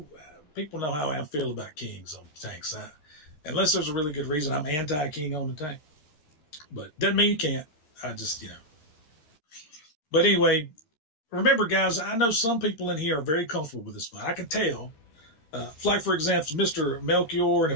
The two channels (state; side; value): late; right; 13 ms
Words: people know how I feel about kings on tanks. Unless there's a really good reason, I'm anti-king on the tank. But doesn't mean you can't. I just, But anyway, remember, guys, I know some people in here are very comfortable with this fight. I can tell. Like, for example, Mr. Melchior and